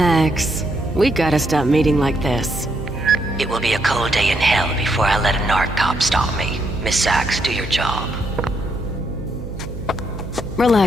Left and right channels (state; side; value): noise; right; hum, 10 dB below the sound